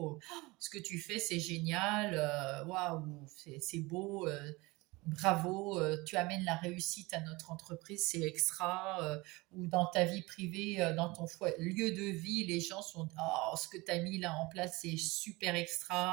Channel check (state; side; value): quieter; left; 23.0 dB